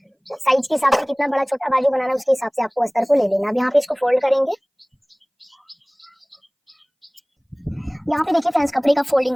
साइज के हिसाब से कितना बड़ा छोटा बाजू बनाना है उसके हिसाब से आपको अस्तर को ले लेना। अब यहाँ पे इसको फोल्ड करेंगे। यहाँ पे देखिए फ्रेंड्स, कपड़े का फोल्डिंग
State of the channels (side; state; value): both; identical; correlation 1.00